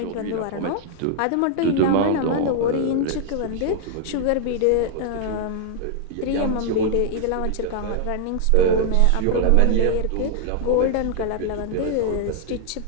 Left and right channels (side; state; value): both; different; correlation -0.01